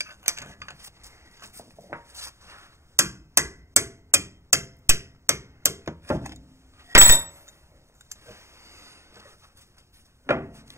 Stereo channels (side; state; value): left; late; 0.13 ms